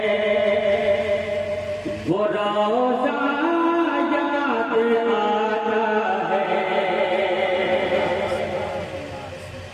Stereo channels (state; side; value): identical; both; correlation 1.00